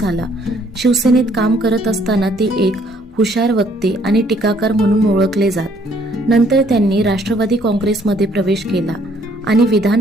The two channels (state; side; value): normal; both; correlation 0.64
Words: शिवसेनेत काम करत असताना ते एक हुशार वक्ते आणि टीकाकार म्हणून ओळखले जात. नंतर त्यांनी राष्ट्रवादी काँग्रेसमध्ये प्रवेश केला आणि विधान